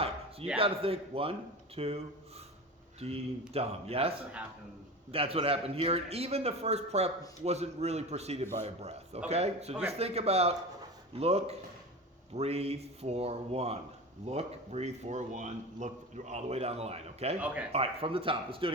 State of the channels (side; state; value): both; normal; correlation 0.29